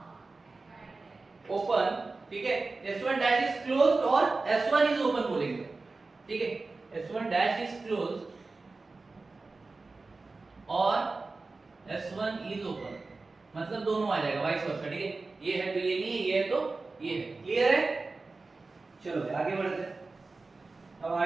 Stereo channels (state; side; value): quieter; left; 3.7 dB